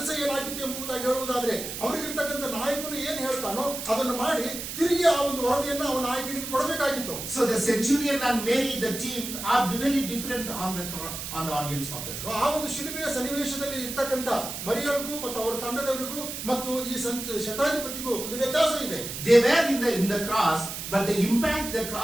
ಏನಾಗಿತ್ತು ಎಂಬುದಾಗಿ ಹೇಳುವುದಾದ್ರೆ ಅವರಿಗಿರ್ತಕ್ಕಂಥ ನಾಯಕನು ಏನ್ ಹೇಳ್ತಾನೋ ಅದನ್ನು ಮಾಡಿ ತಿರುಗಿ ಆ ಒಂದು ವರದಿಯನ್ನ ಅವನ ನಾಯಕನಿಗೆ ಕೊಡಬೇಕಾಗಿತ್ತು. So the centurion and Mary, the team, are very different on the audience of the so ಆ ಒಂದು ಶಿಲುಬೆಯ ಸನ್ನಿವೇಶದಲ್ಲಿ ಇರ್ತಕ್ಕಂಥ ಮರಿಯಳಿಗೂ ಮತ್ತು ಅವರ ತಂಡದವರಿಗೂ ಮತ್ತು ಈ ಶತಾಧಿಪತಿಗೂ ಒಂದು ವ್ಯತ್ಯಾಸ ಇದೆ. They were in the cross, but the impact the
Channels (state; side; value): noise; right; hiss, 7 dB below the sound